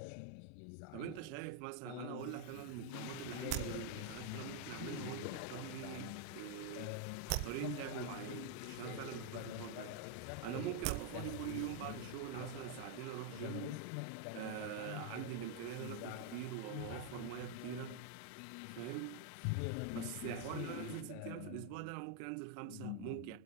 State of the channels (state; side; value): different; both; correlation 0.01